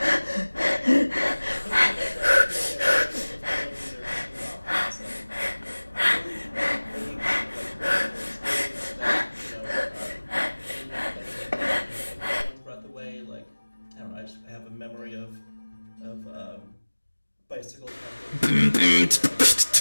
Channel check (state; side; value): inverted; both; correlation -1.00